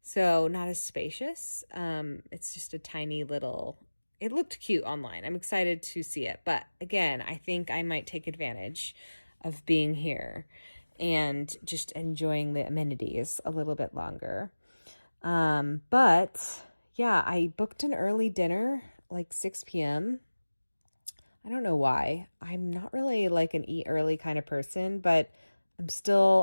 So not as spacious. It's just a tiny little, it looked cute online. I'm excited to see it. But again, I think I might take advantage of being here and just enjoying the amenities a little bit longer. But yeah, I booked an early dinner, like 6 p.m. I don't know why. I'm not really like an eat early kind of person, but I'm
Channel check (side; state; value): both; inverted; correlation -1.00